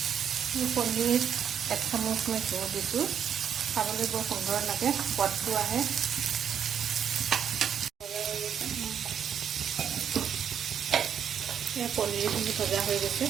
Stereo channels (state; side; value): quieter; left; 8.4 dB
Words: পনীৰ 1 চামুচ মই ঘিউ দিছোঁ। খাবলৈ বৰ সুন্দৰ লাগে, সোৱাদটো আহে। পনীৰখিনি ভজা হৈ গৈছে।